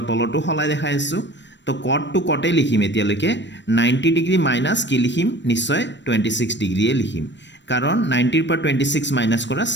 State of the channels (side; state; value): right; late; 0.53 ms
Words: তলতো সলাই দেখাই আছোঁ। তো কটটো কটেই লিখিম এতিয়ালৈকে, 90 ডিগ্ৰী মাইনাছ কি লিখিম, নিশ্চয় 26 ডিগ্ৰীয়ে লিখিম, কাৰণ 90ৰ পৰা 26 মাইনাছ কৰা